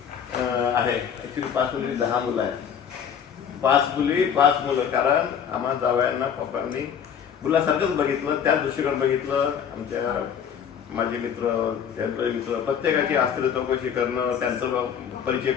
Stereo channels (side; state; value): right; quieter; 8.0 dB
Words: आहे. ॲक्च्युली 5 मुली 10 मुलं आहेत. 5 मुली 5 मुलं, कारण आम्हा जावयांना पप्पांनी मुलासारखंच बघितलं, त्या दृष्टीकडे बघितलं. आमच्या माझे मित्र, त्यांचे मित्र, प्रत्येकाची आस्त्र चौकशी करणं, त्यांचा परिचय